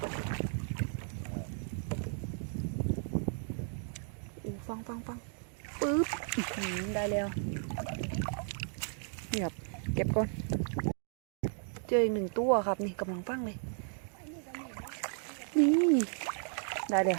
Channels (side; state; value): left; silent; 55 dB below the other